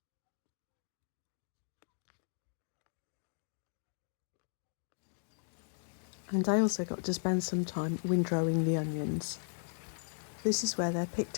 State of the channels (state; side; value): silent; right; digital silence